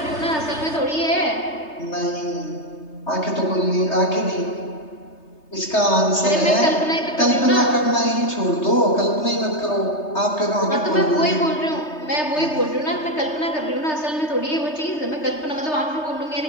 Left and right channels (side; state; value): right; late; 3.3 ms